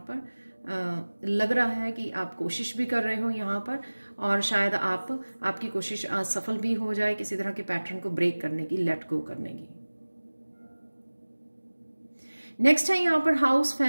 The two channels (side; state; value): both; inverted; correlation -1.00